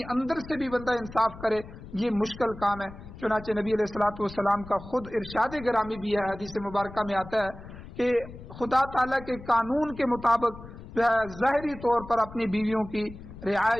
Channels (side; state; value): left; noise; rumble, 15 dB below the sound